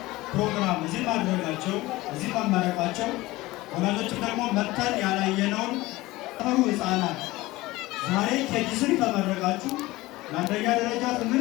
ፕሮግራም እዚህ ማድረጋቸው እዚህ መመረቃቸው ወላጆችም ደግሞ መጥተን ያላየነውን ተፈሩ ህፃናት ዛሬ ኬጂ3 ተመረቃችሁ ለአንደኛ ደረጃ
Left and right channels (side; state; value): right; quieter; 19.3 dB